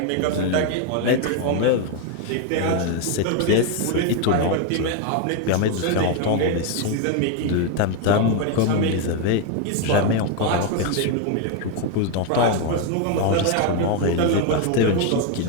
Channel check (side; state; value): both; different; correlation 0.01